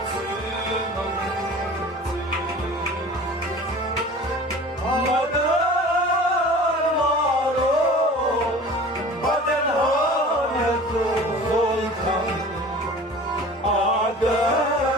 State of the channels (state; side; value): normal; both; correlation 0.42